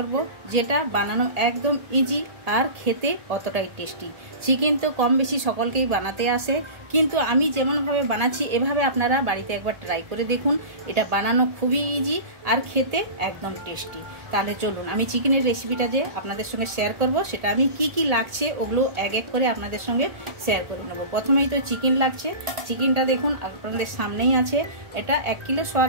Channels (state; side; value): late; left; 1.7 ms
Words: যেটা বানানো একদম ইজি আর খেতে অতটাই টেস্টি। চিকেন তো কম বেশি সকলকেই বানাতে আসে, কিন্তু আমি যেমনভাবে বানাচ্ছি এভাবে আপনারা বাড়িতে একবার ট্রাই করে দেখুন। এটা বানানো খুবই ইজি আর খেতে একদম টেস্টি। তাহলে চলুন আমি চিকেনের রেসিপিটা যে আপনাদের সঙ্গে শেয়ার করব, সেটা আমি কি লাগছে ওগুলো এক এক করে আপনাদের সঙ্গে শেয়ার করে নেব। প্রথমেই তো চিকেন লাগছে। চিকেনটা দেখুন আপনাদের সামনেই আছে। এটা 1 কিলো